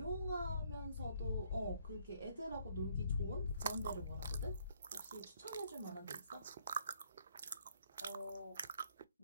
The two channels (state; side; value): inverted; both; correlation -0.67